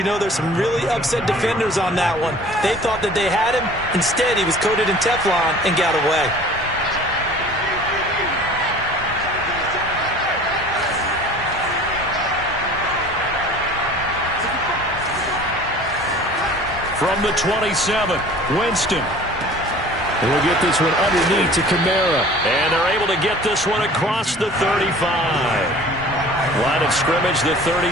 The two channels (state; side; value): normal; both; correlation 0.46